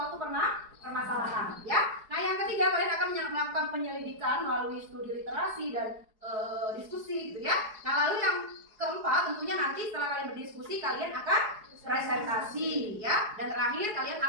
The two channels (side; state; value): left; late; 4.7 ms